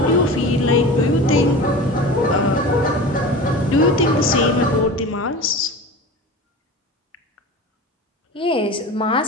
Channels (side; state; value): both; normal; correlation 0.33